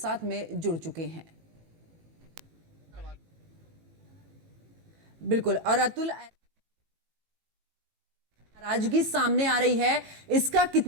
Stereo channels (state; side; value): late; left; 18 ms